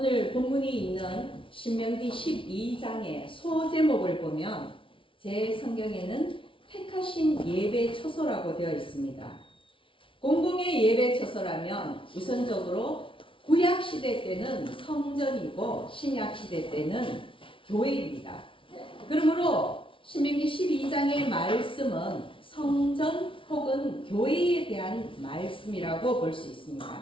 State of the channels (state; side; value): late; right; 0.25 ms